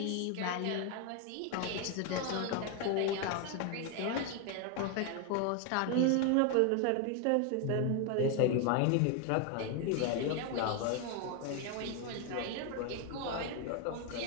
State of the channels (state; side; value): different; both; correlation 0.01